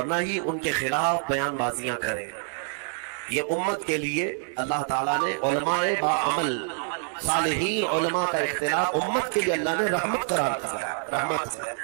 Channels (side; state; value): left; silent; 61 dB below the other